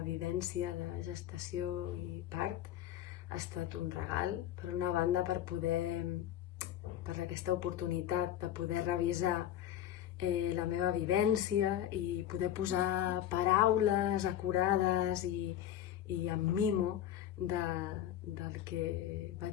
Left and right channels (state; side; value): quieter; right; 11.5 dB